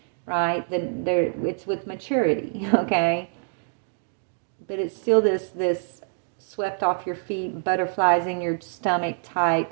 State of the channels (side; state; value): left; silent; digital silence